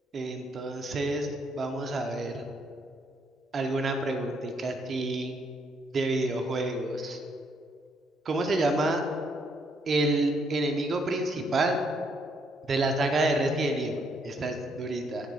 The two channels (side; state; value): both; normal; correlation 0.72